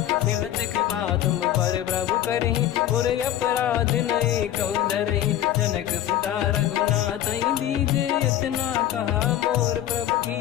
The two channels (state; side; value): quieter; right; 11.9 dB